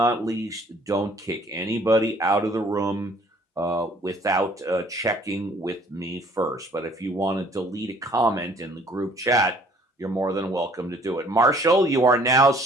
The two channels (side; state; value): both; normal; correlation 0.57